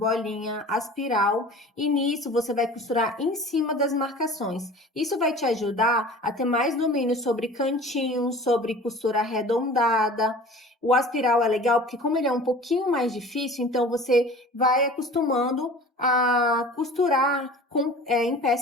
aspiral e nisso você vai costurar em cima das marcações. Isso vai te ajudar a ter mais domínio sobre cantinhos, sobre costura arredondada. O aspiral é legal porque como ele é um pouquinho mais difícil, então você vai acostumando a costurar em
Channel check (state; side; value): normal; both; correlation 0.42